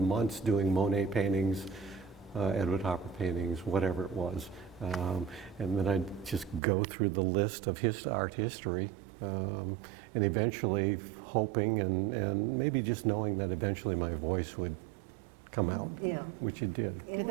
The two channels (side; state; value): left; drops out; at 6.6 s